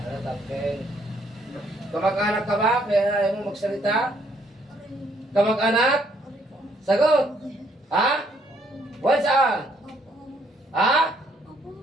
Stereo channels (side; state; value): both; normal; correlation 0.68